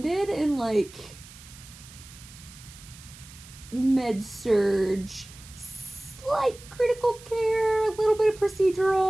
in, med-surg, slight critical care, a little bit of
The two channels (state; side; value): noise; right; hiss, 19 dB below the sound